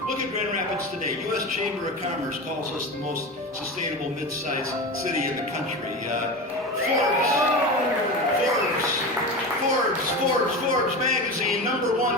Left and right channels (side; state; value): both; normal; correlation 0.25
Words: Look at Grand Rapids today. U.S. Chamber of Commerce calls us the most sustainable mid-sized city in the country. Forbes magazine,